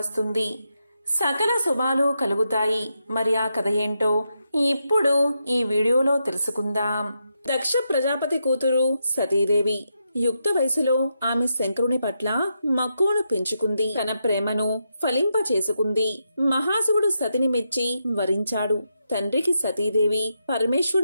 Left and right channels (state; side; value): inverted; both; correlation -0.84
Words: సకల శుభాలు కలుగుతాయి. మరి ఆ కథ ఏంటో ఇప్పుడు ఈ వీడియోలో తెలుసుకుందాం. దక్ష ప్రజాపతి కూతురు సతీదేవి యుక్త వయసులో ఆమె శంకరుని పట్ల మక్కువను పెంచుకుంది. తన ప్రేమను ఫలింప చేసుకుంది. మహాశివుడు సతిని మెచ్చి వరించాడు. తండ్రికి సతీదేవి